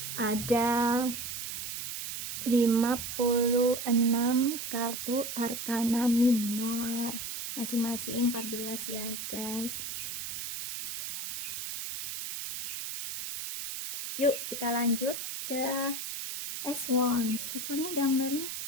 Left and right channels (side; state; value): right; noise; hiss, 6 dB below the sound